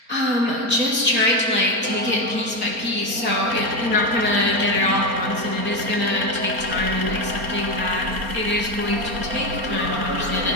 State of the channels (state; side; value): late; left; 4.3 ms